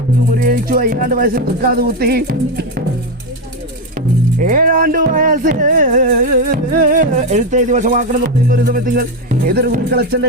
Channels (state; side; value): normal; both; correlation 0.09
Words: മുറിയഴിച്ചു. 5 വയസ്സിൽ തൃക്കാത് കുത്തി. 7 വയസ്സിൽ എഴുത്തെഴുതി വശമാക്കണം എന്ന് പറയുന്ന ഒരു സമയത്തിങ്ങൾ ഏതൊരു കുരുക്കളച്ചന്റെ